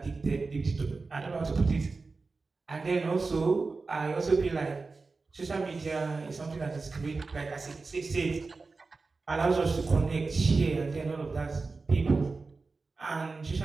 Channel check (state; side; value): quieter; left; 4.0 dB